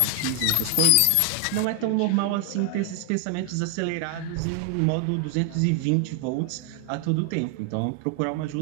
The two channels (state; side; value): different; both; correlation 0.00